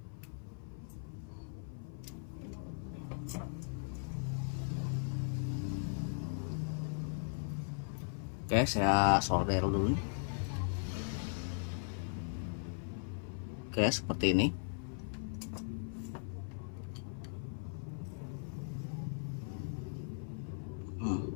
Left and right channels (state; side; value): silent; right; 52 dB below the other